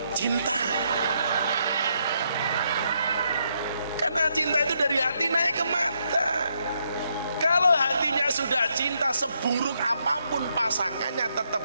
cinta. Karena cinta itu dari hati naik ke mata. Kalau hatinya sudah cinta, seburuk apapun pasangannya tetap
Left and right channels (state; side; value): inverted; both; correlation -0.77